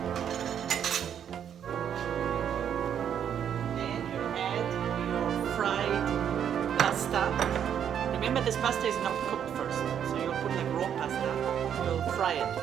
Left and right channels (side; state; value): left; quieter; 8.9 dB